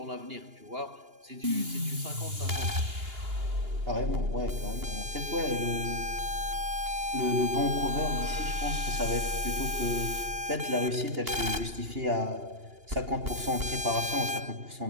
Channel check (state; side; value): late; left; 2.8 ms